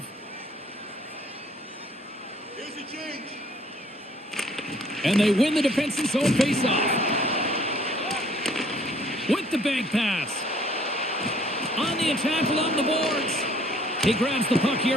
And they win the defensive zone face-off. With the bank pass. On the attack along the boards. He grabs the puck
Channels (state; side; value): normal; both; correlation 0.59